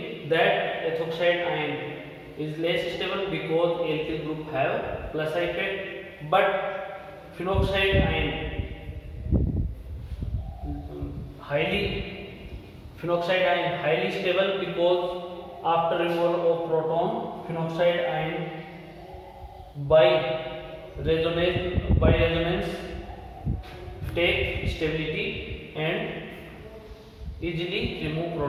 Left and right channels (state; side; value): identical; both; correlation 1.00